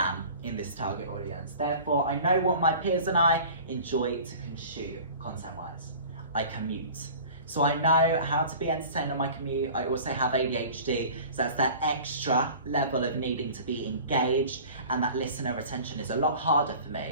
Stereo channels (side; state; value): both; inverted; correlation -0.42